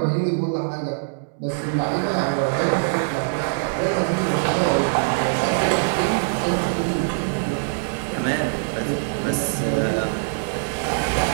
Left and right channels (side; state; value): left; silent; digital silence